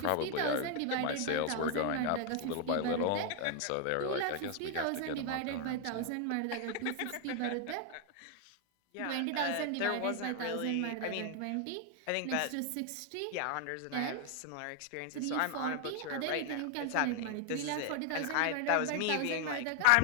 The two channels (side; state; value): both; different; correlation 0.00